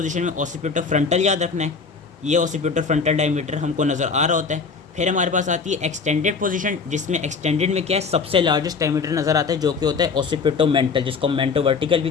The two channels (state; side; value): quieter; right; 5.1 dB